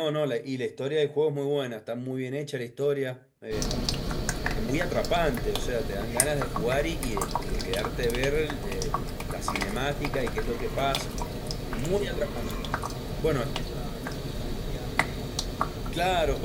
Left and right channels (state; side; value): identical; both; correlation 1.00